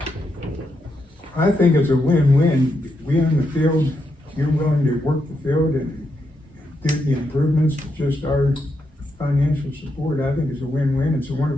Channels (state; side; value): normal; both; correlation 0.82